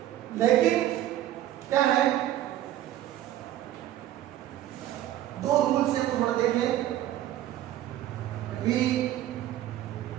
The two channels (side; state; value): left; quieter; 13.1 dB